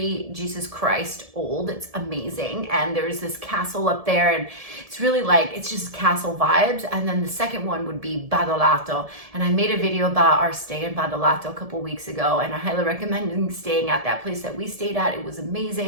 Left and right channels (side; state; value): left; late; 1.7 ms